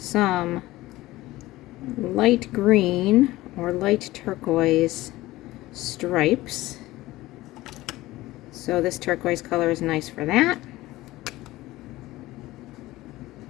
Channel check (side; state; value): right; quieter; 17.8 dB